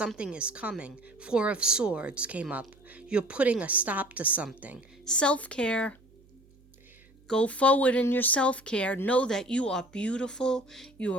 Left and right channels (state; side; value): noise; right; hum, 29 dB below the sound